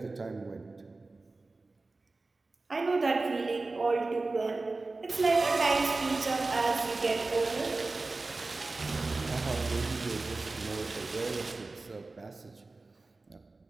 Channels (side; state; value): left; quieter; 3.5 dB